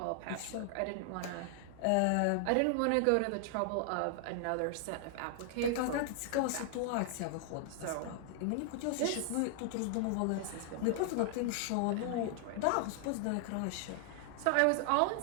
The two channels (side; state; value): both; different; correlation 0.00